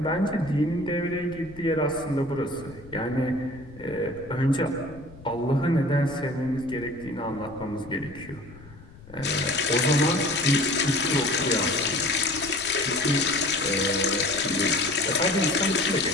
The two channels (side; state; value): left; noise; rumble, 20 dB below the sound